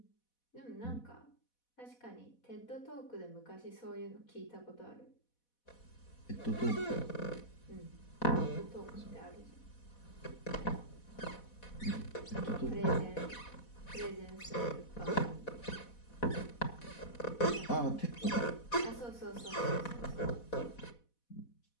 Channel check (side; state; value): right; late; 4.1 ms